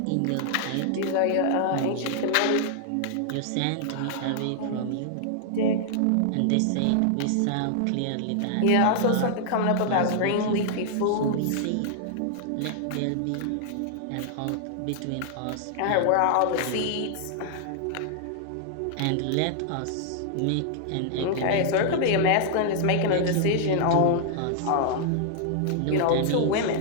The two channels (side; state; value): both; different; correlation -0.01